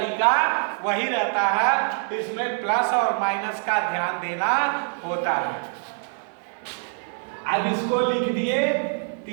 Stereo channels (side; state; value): left; silent; 57 dB below the other